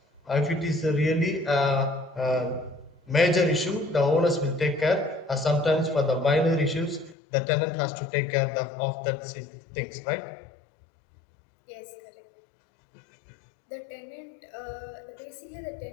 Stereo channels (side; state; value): right; drops out; at 7.2 s